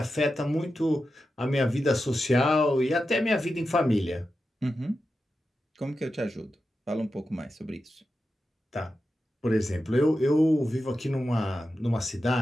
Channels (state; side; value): normal; both; correlation 0.90